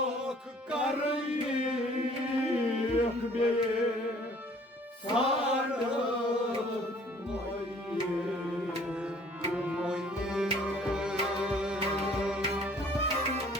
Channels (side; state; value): both; normal; correlation 0.56